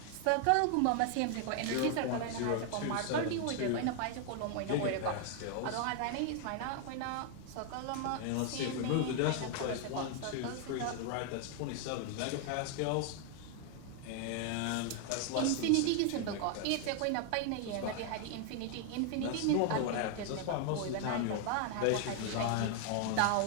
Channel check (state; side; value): different; both; correlation 0.00